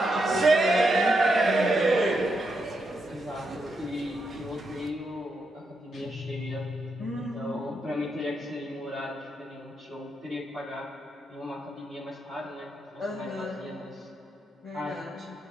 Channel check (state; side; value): normal; both; correlation 0.82